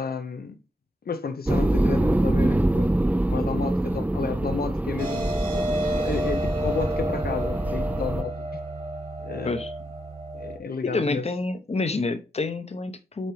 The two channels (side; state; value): both; normal; correlation 0.83